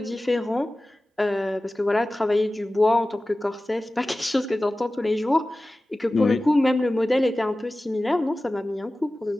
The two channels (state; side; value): normal; both; correlation 0.96